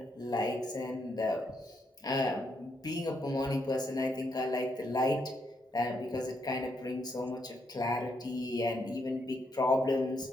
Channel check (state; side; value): normal; both; correlation 0.77